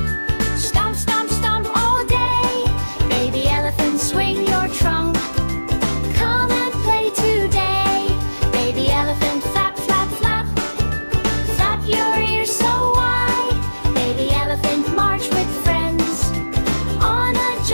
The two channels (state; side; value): inverted; both; correlation -1.00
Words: Stomp, stomp, stomp all day. Baby elephant, swing your trunk. Come and play today. Baby elephant, flap, flap, flap. Flap your ears so wide. Baby elephant, march with friends on a